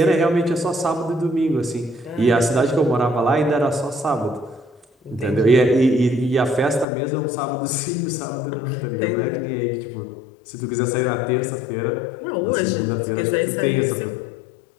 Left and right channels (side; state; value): right; drops out; at 6.9 s